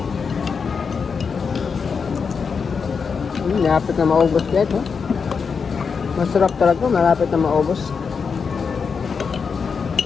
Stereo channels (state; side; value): quieter; right; 5.7 dB